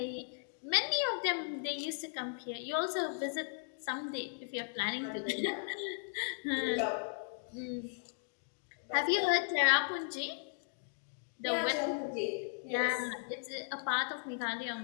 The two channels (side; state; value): right; silent; digital silence